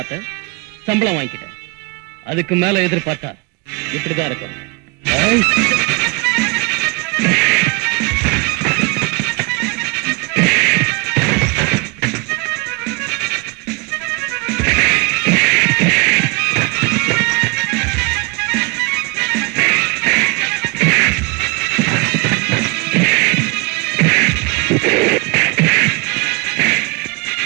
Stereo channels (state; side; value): quieter; left; 27.6 dB